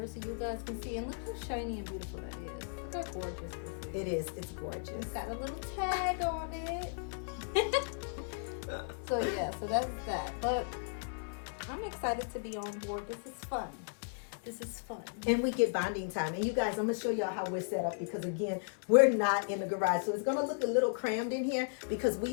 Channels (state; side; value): silent; right; 54 dB below the other